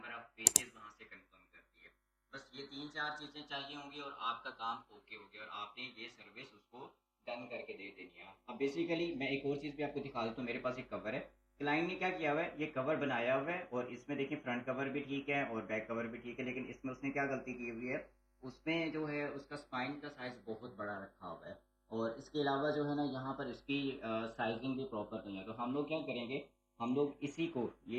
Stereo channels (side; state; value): both; identical; correlation 1.00